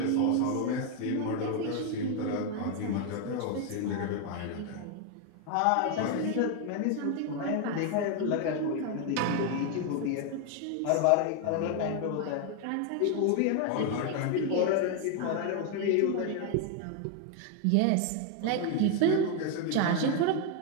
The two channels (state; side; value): different; both; correlation 0.01